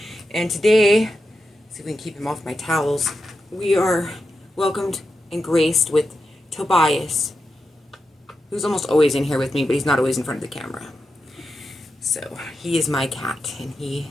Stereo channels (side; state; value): both; normal; correlation 0.88